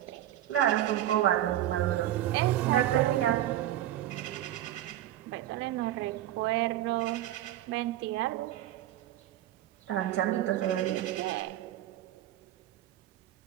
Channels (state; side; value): quieter; left; 13.2 dB